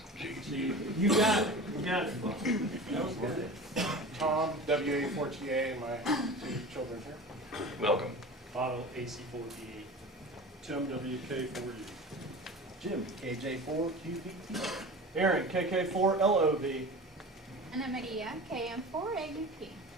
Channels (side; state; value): both; normal; correlation 0.35